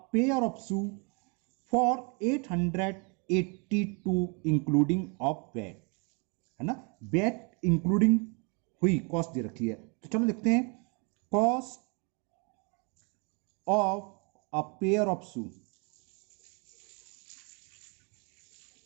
pair of shoe for 882 including of VAT, है ना, बैट इंक्लूडिंग हुई कॉस्ट दे रखी है। तो चलो लिखते हैं cost of a pair of shoe,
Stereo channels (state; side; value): quieter; left; 33.9 dB